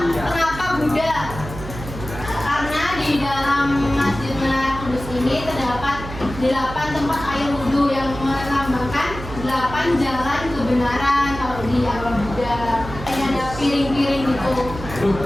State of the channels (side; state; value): right; noise; hum, 11 dB below the sound